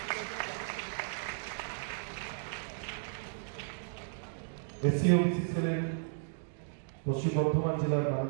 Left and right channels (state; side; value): silent; left; digital silence